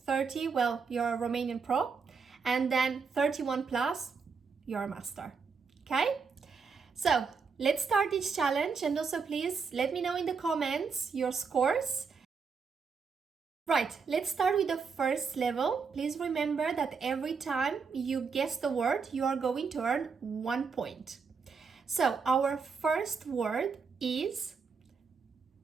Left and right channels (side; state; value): left; quieter; 5.4 dB